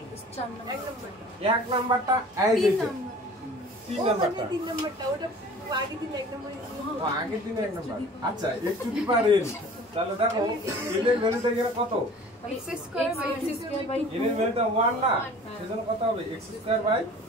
এক নাম্বারটা এই যে 3 নাম্বারটা, আগের দিনে 1 নাম্বার। আচ্ছা x to the power n, তাহলে দেখো n এর ভ্যালুটা এখানে কত? n এর ভ্যালুটা 1 না, সেজন্য কত হবে? x²/2।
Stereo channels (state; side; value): normal; both; correlation 0.45